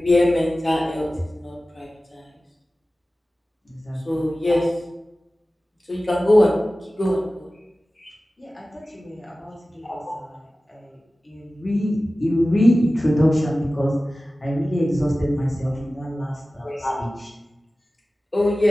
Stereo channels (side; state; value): both; normal; correlation 0.96